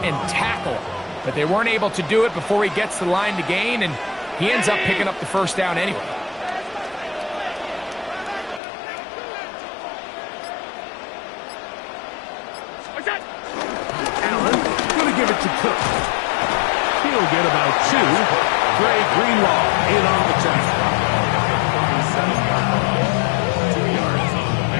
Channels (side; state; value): right; drops out; at 8.6 s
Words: and tackle. But they weren't able to do it before he gets the line to gain, and he ends up picking up the first down anyway. Allen going to give it to Cook. He'll get about 2. Dre Greenlaw in on the tackle. 2 yards on the